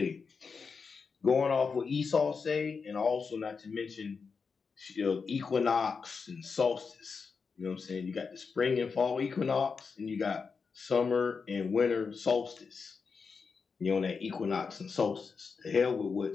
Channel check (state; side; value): quieter; right; 5.3 dB